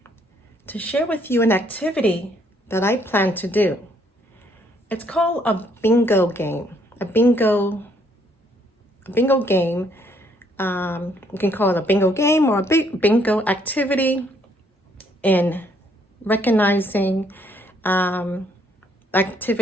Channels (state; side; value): normal; both; correlation 0.68